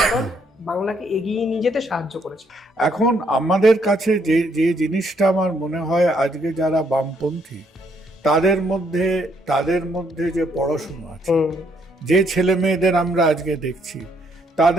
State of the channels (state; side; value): normal; both; correlation 0.71